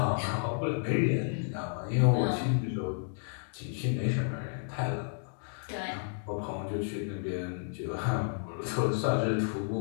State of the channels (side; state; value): right; silent; digital silence